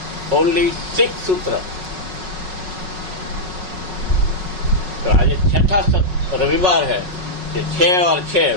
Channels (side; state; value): left; late; 5.4 ms